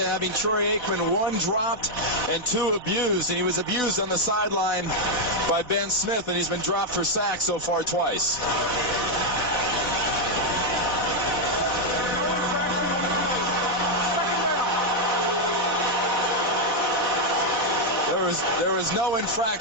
having Troy Aikman 1 dropped and 2 abused, and he was abused on the sideline by Ben Smith, and he's been dropped for sacks so far twice. There was no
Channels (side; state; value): right; late; 4.1 ms